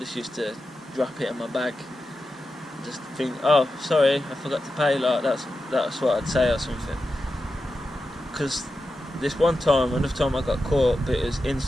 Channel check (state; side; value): normal; both; correlation 0.90